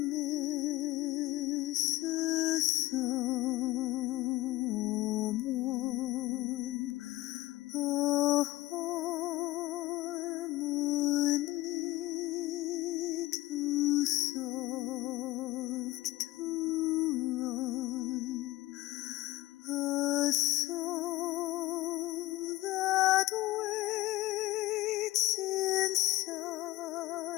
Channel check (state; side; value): quieter; right; 17.6 dB